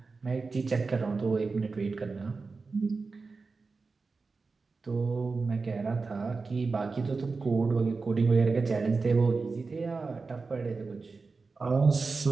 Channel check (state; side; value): quieter; left; 4.2 dB